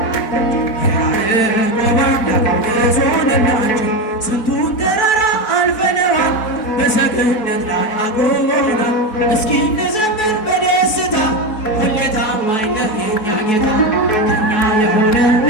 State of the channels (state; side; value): late; right; 4.1 ms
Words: እንዘምር በደስታ ሁሌ ታማኝ ነህ የኛ ጌታ ከኛ የሆነ